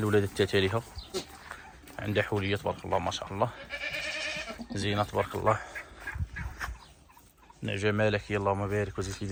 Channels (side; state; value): both; identical; correlation 1.00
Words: التالية، عندها حولية تبارك الله ما شاء الله، زينة تبارك الله، نعجة ملكية اللهم بارك وزيد في